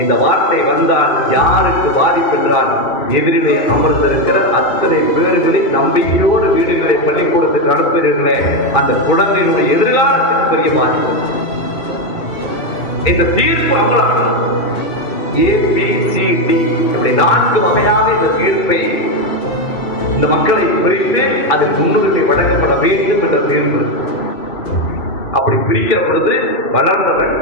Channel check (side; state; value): right; late; 2.7 ms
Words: இந்த வார்த்தை வந்தால் யாருக்கு பாதிப்பு என்றால், எதிரிலே அமர்ந்திருக்கிற அத்தனை பேர்களின் நம்பிக்கையோடு வீடுகளை பள்ளிக்கூடத்துக்கு அனுப்புகிறீர்களே, அந்த குழந்தைகளுடைய எதிர்காலத்துக்கு பெரிய பாதிப்பு. இந்த தீர்ப்பு அமலாம் ABCD இப்படி 4 வகையாக இந்த தீர்ப்பை இந்த மக்களை பிரித்து அதில் முன்னுரிமை வழங்கப்பட வேண்டும் என்ற தீர்ப்பு. அப்படி பிரிக்கிற பொழுது வளர்ந்தவன்,